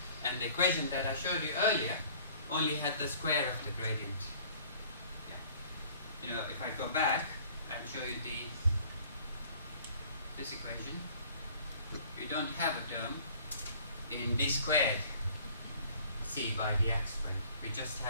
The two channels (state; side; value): inverted; both; correlation -0.52